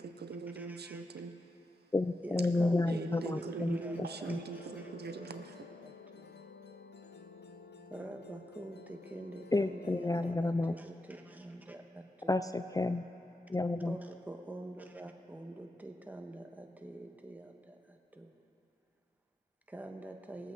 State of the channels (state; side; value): normal; both; correlation 0.86